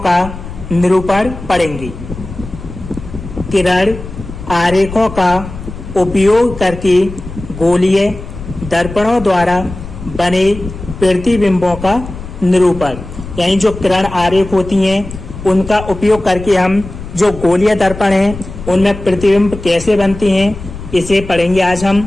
निरूपण पढ़ेंगे। किरण आरेखों का उपयोग करके गोलीय दर्पणों द्वारा बने प्रतिबिंबों का निरूपण, यानी जो किरण आरेख होती हैं उनका उपयोग करके हम जो गोलीय दर्पण हैं उनमें प्रतिबिंब कैसे बनते हैं इसे पढ़ेंगे आज हम।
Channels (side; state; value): left; noise; rumble, 12 dB below the sound